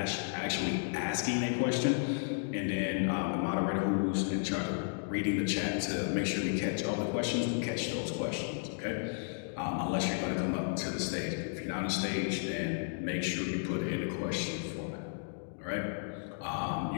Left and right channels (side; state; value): right; silent; digital silence